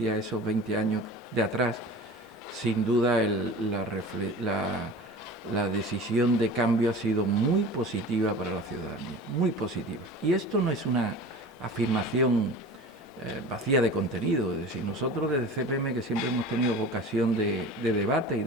a esos 20 años de atrás, sin duda la decisión de cambio ha sido muy positiva para la ciudadanía, muy positiva. Y esto no es una afirmación vacía de contenido, es decir, nosotros desde CPM, que siempre hemos tenido vocación de debate y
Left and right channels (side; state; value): both; normal; correlation 0.37